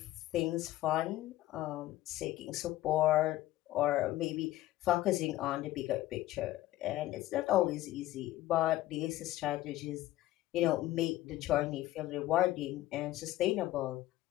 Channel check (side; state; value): right; quieter; 15.6 dB